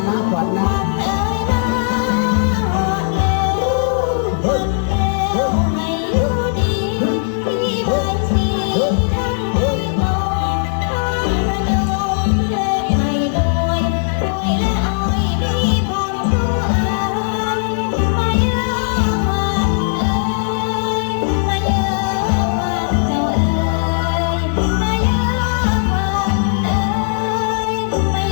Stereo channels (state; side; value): silent; right; digital silence